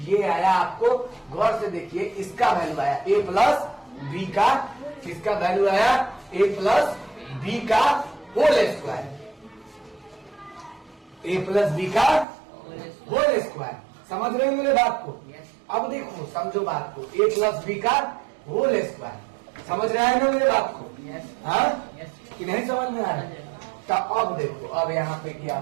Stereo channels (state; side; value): drops out; left; at 12.2 s